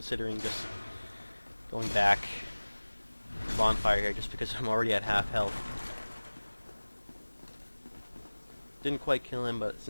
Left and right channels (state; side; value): inverted; both; correlation -1.00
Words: just going back to Bonfire here, just because I'm already at half health. Didn't quite kill him, but